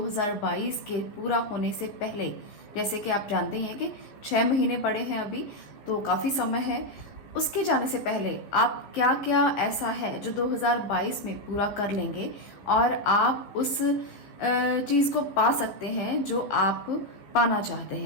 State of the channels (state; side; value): late; right; 15 ms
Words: के पूरा होने से पहले, जैसे कि आप जानते हैं कि 6 महीने पड़े हैं अभी, तो काफ़ी समय है। उसके जाने से पहले आप क्या क्या ऐसा है जो 2022 में पूरा कर लेंगे और आप उस चीज़ को पा सकते हैं जो आप पाना चाहते